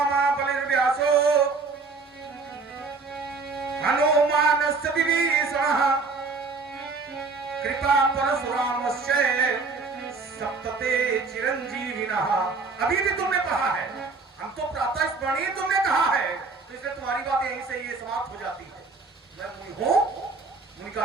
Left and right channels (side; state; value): left; quieter; 4.2 dB